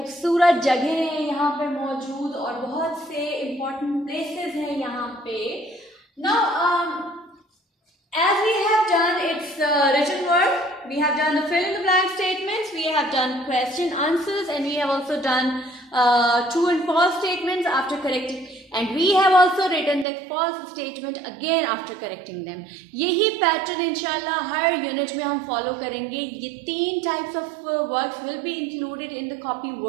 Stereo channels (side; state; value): left; drops out; at 20.1 s